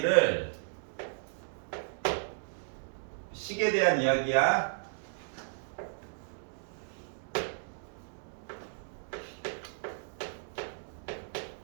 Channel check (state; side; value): silent; left; digital silence